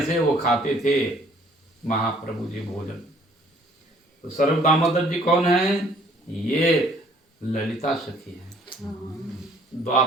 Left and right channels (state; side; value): normal; both; correlation 0.59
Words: से वो खाते थे महाप्रभु जी भोजन। तो सर्व दामोदर जी कौन है? ये ललिता सखी है,